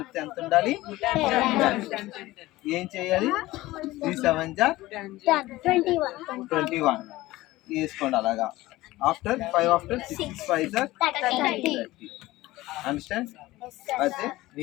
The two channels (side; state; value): right; quieter; 18.1 dB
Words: ఎంత ఉండాలి, ఏం చేయాలి 3 7 21 వేసుకోండి అలాగా. After 5 after 6 5 30. అండర్స్టాండ్. అయితే